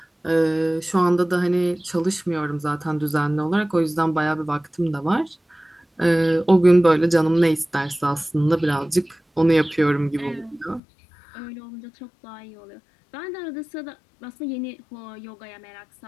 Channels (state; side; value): drops out; right; at 10.8 s